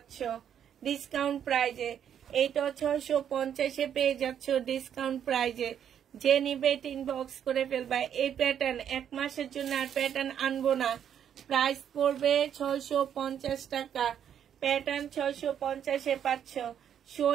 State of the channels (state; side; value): quieter; left; 9.1 dB